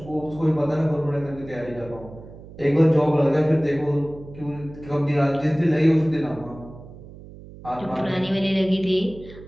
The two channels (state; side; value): noise; right; hum, 17 dB below the sound